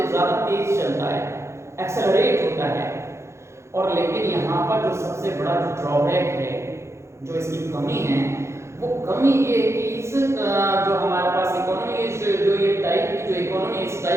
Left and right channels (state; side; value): late; left; 0.13 ms